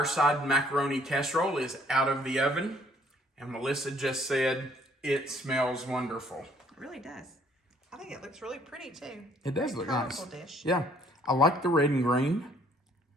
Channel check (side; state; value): both; normal; correlation 0.62